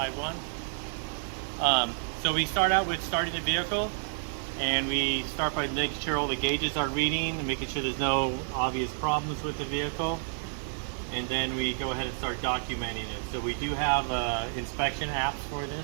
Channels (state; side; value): silent; left; digital silence